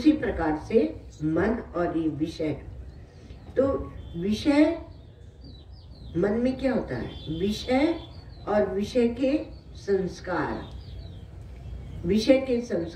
प्रकार से मन और ये विषय, तो विषय मन में क्या होता है? विषय और विषय के संस्कार, विषय के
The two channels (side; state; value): both; identical; correlation 1.00